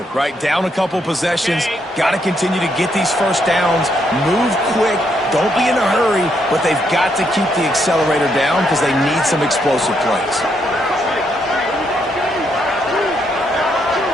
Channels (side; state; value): both; normal; correlation 0.76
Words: right? Down a couple possessions, got to continue to get these first downs, move quick, don't be in a hurry, but they've got to keep the accelerator down because they need some explosive plays.